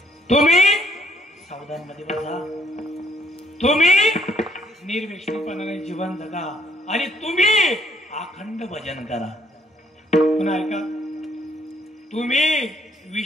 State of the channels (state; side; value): normal; both; correlation 0.67